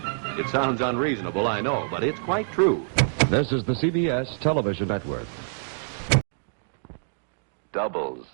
It sounds unreasonable, I know, but it's quite true. This is the CBS Television Network. Doubles.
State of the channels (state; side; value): silent; left; digital silence